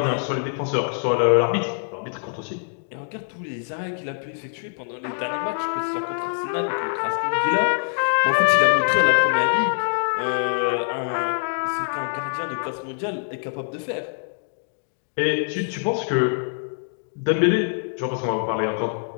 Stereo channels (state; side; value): silent; right; 63 dB below the other